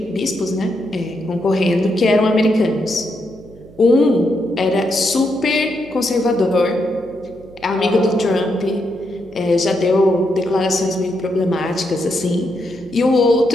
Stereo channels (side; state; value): right; noise; hum, 23 dB below the sound